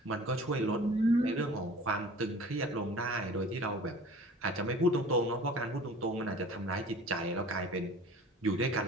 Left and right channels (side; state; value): both; normal; correlation 0.44